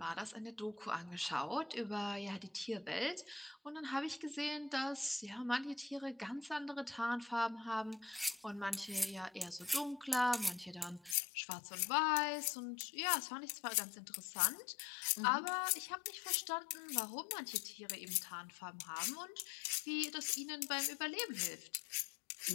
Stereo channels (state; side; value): drops out; right; at 11.2 s